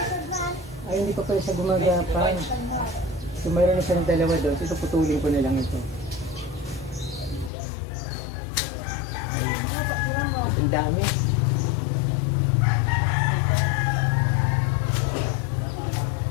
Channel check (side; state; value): right; drops out; at 7.5 s